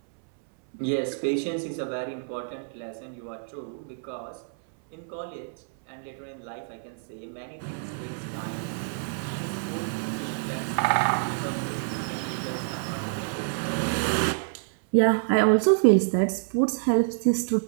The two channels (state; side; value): silent; left; 60 dB below the other